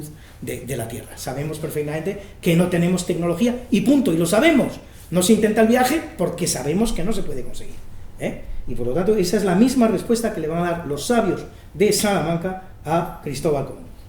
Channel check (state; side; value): identical; both; correlation 1.00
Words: de la Tierra. Sabemos perfectamente que no tenemos tecnología y punto, y lo sabemos. No se intenta el viaje porque sabemos que no se puede conseguir. Y por lo tanto, esa es la misma respuesta que le van a dar los sabios de Salamanca a Cristóbal Colón.